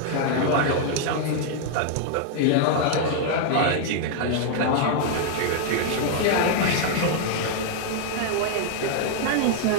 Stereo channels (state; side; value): different; both; correlation -0.01